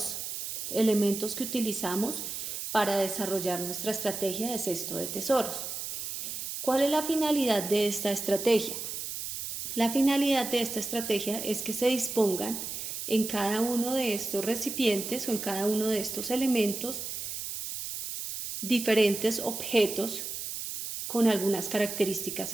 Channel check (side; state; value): right; noise; hiss, 6 dB below the sound